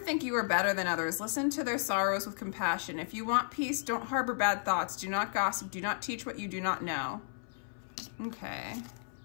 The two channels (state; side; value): silent; right; 55 dB below the other